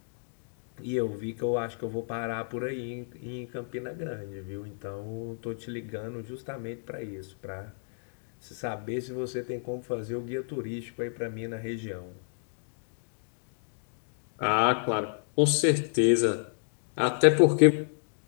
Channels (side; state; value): right; silent; digital silence